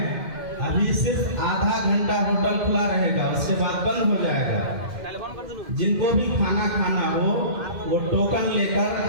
अभी सिर्फ आधा घंटा होटल खुला रहेगा, उसके बाद बंद हो जाएगा। जिनको भी खाना खाना हो वो टोकन लेकर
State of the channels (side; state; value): left; late; 2.1 ms